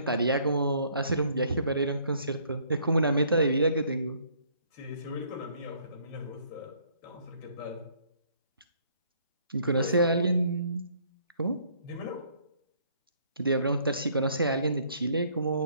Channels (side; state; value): both; inverted; correlation -0.63